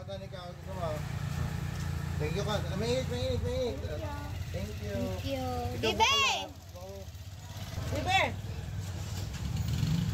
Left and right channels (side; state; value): both; identical; correlation 1.00